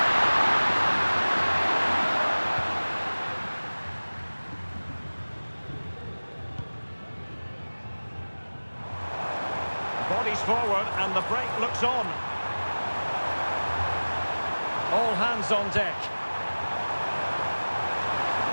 Bodies forward and the break looks on. All hands on deck.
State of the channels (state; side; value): inverted; both; correlation -1.00